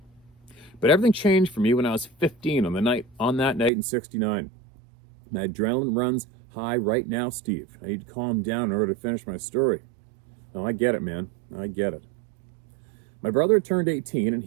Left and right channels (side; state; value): left; drops out; at 3.7 s